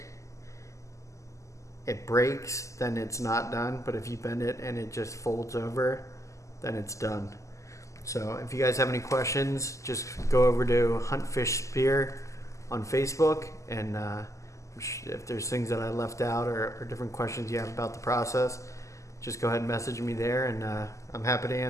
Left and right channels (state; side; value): late; right; 0.15 ms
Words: it breaks, then it's not done. But if you bend it and it just folds over, then it's done. So if you guys have any questions, just go over to Hunt Fish Spear on Facebook, and if there's things that I left out or different questions you have about the process, just go ahead and message me there, and I'm happy to